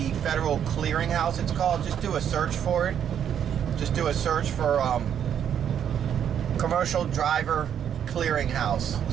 federal clearinghouse, it's called, just do a search for it. Just do a search for commercial driver clearinghouse.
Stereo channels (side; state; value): left; quieter; 9.0 dB